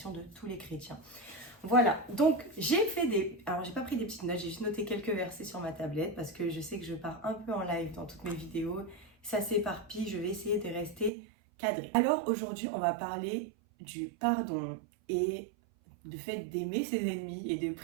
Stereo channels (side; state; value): left; drops out; at 11.1 s